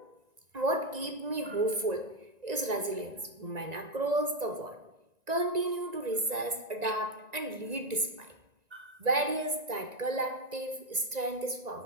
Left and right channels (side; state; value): left; late; 1.9 ms